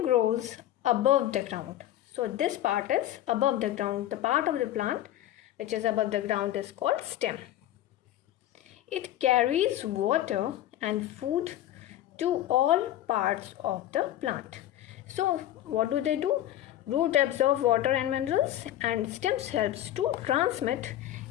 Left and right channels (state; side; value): quieter; right; 13.1 dB